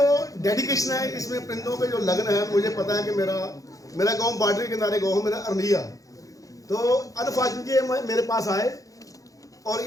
डेडिकेशन है, इसमें परिंदों पे जो लगन है, मुझे पता है कि मेरा गांव बॉर्डर के किनारे गाँव, मेरा अरनिया। तो अनफॉर्चुनेटली मेरे पास आए और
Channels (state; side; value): late; right; 0.17 ms